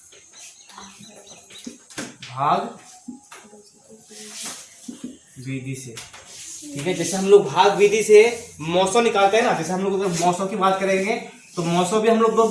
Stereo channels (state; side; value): identical; both; correlation 1.00